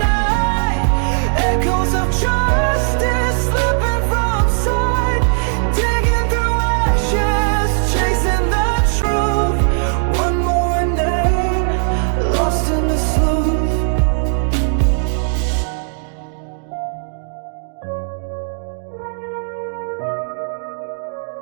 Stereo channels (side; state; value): left; silent; digital silence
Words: Echoes of justice slipping from sight. Digging through ashes, chasing the truth. One more name, lost in the sleuth.